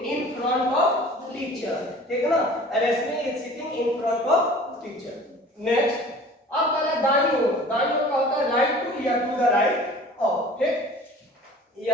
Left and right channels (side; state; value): both; normal; correlation 0.45